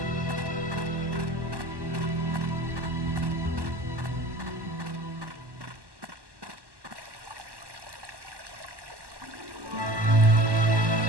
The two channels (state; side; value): late; left; 1.1 ms